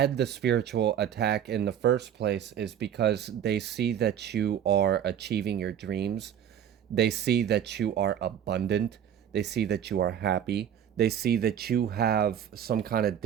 the spiritual attack in the first place is because they see that you are achieving your dreams. They see that you are abundant. They see that you are happy. They see that you have some kind of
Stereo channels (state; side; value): quieter; left; 9.5 dB